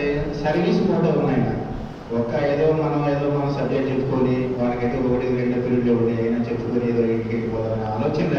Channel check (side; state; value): both; identical; correlation 1.00